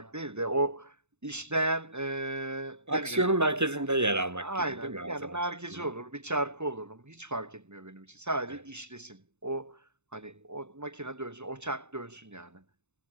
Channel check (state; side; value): late; left; 0.82 ms